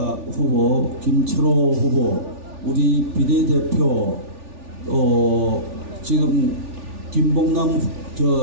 후보, 김철호 후보, 우리 비례대표, 지금 김봉남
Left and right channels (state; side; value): late; left; 3.4 ms